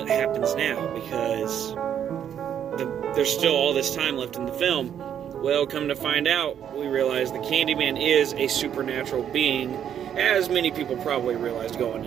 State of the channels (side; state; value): left; quieter; 9.3 dB